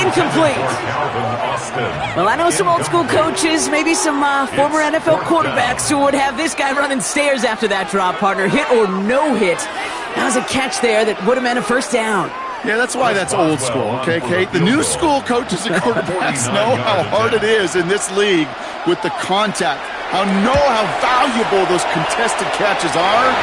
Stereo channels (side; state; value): both; identical; correlation 1.00